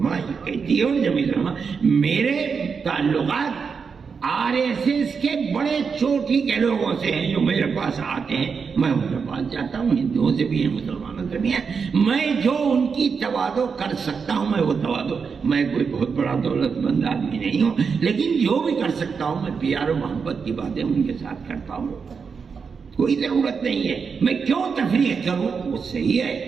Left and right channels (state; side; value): quieter; left; 5.7 dB